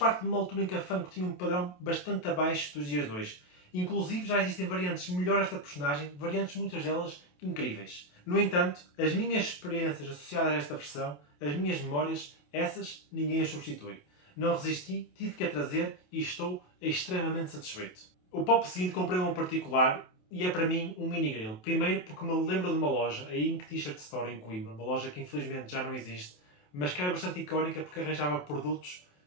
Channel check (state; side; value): late; right; 28 ms